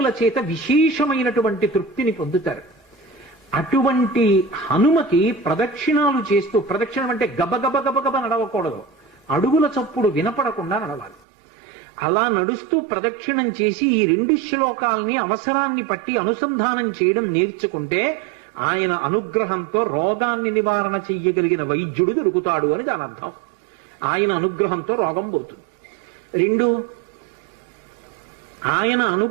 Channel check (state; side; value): drops out; left; at 11.2 s